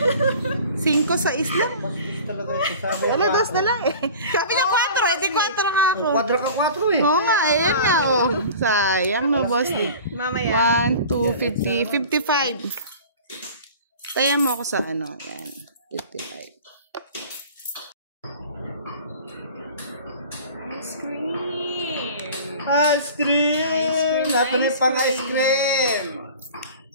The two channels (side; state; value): both; inverted; correlation -0.41